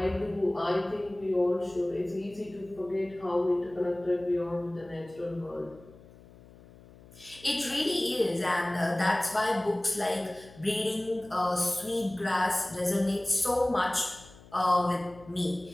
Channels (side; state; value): left; noise; hum, 22 dB below the sound